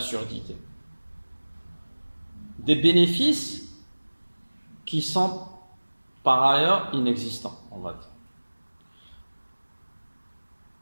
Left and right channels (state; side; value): inverted; both; correlation -1.00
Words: Des bénéfices qui sont par ailleurs inexistants, on va dire.